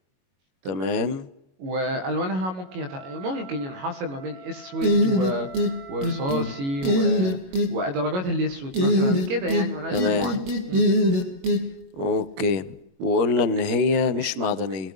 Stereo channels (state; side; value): late; left; 22 ms